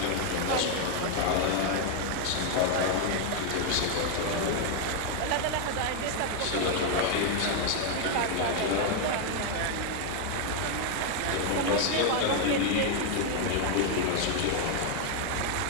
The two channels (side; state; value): both; different; correlation 0.00